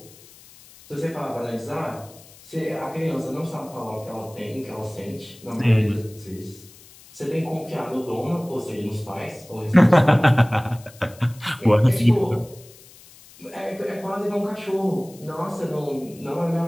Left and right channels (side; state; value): left; noise; hiss, 23 dB below the sound